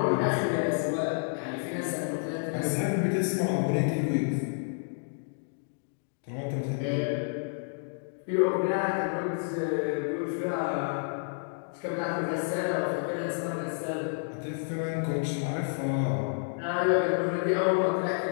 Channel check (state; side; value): silent; right; digital silence